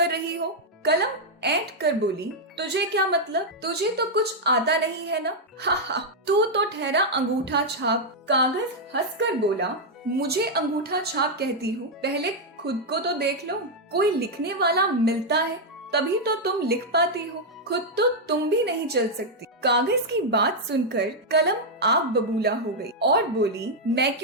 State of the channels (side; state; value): both; normal; correlation -0.02